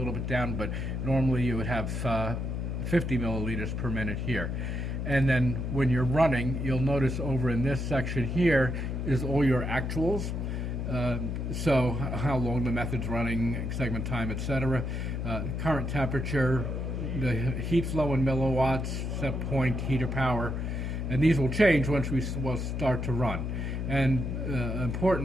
bit down, but normally you would have 50 milliliters per minute here. And then when you're running, you'll notice over in this section here is all your actuals. So how long the method's running, segment time, etc. Current temperature, the heat flow in milliwatts, set point, heater power, and these will change once we will start to run. And an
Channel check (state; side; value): noise; left; hum, 2 dB below the sound